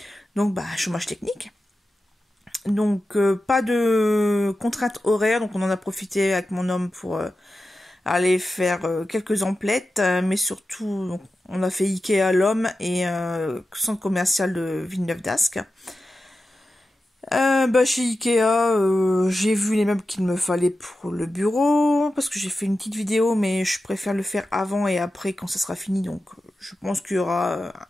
Donc chômage technique. Donc pas de contraintes horaires, donc on en a profité avec mon homme pour aller faire quelques emplettes, mais surtout donc, on a fait Ikea à l'homme et centre commercial de Villeneuve-d'Ascq. Chez Ikea, j'ai vu les meubles qu'il me fallait pour le bureau, parce que j'ai fait une petite vidéo, mais je préfère le faire avant et après quand ça sera fini, donc je pense qu'il y aura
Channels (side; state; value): both; normal; correlation 0.92